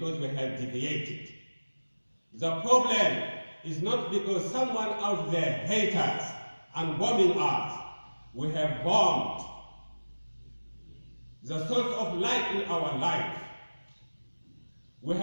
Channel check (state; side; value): inverted; both; correlation -1.00